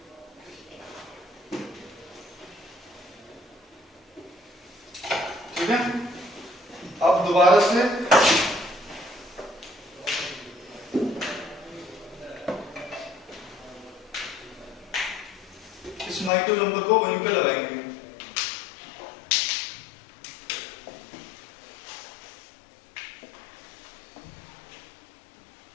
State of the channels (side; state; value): right; drops out; at 16.3 s